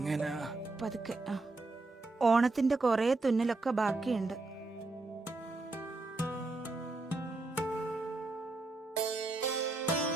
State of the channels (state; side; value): quieter; left; 3.3 dB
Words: പതുക്കെ. ഓണത്തിന്റെ കൊറേ തുന്നലൊക്കെ ബാക്കിയുണ്ട്.